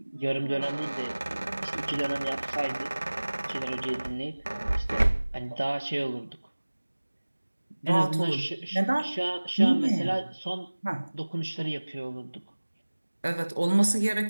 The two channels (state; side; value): inverted; both; correlation -1.00